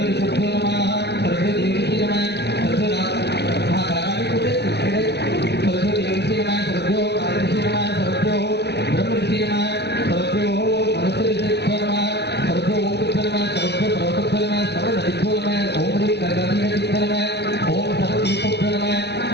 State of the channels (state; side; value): late; right; 0.49 ms